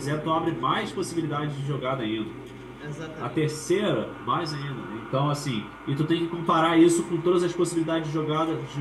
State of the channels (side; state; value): both; identical; correlation 1.00